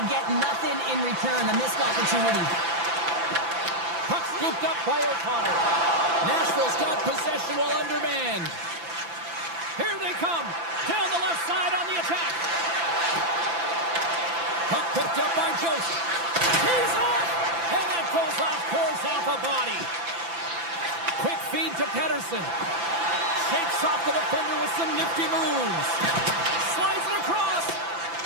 get nothing in return, a missed opportunity. Puck scooped up by O'Connor. Nashville's got possession while undermanned. Here they come. Down the left side on the attack. Puck picked up by Jost. He's off. And that goes off, pours off a body. Quick feed to Pettersson. Shakes off the defender with some nifty moves. Slides it across.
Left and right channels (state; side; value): late; left; 5.9 ms